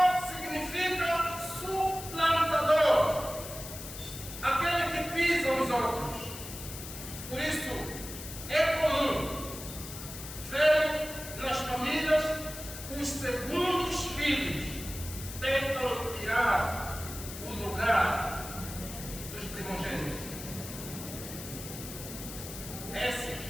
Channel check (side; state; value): left; noise; hiss, 11 dB below the sound